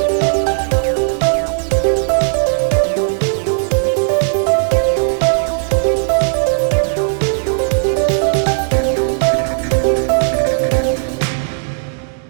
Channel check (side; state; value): left; silent; digital silence